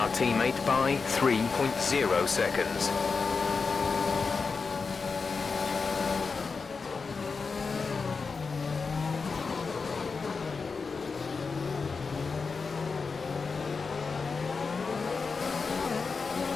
teammate by 3.0 seconds.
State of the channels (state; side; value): quieter; right; 4.8 dB